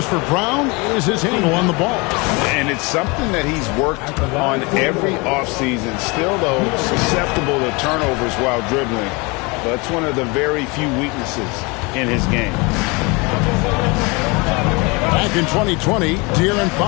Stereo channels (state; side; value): quieter; right; 27.4 dB